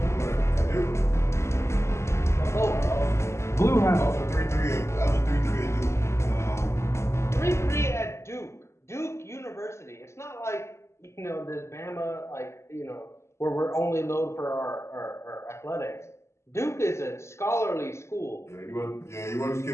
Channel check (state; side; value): late; right; 0.13 ms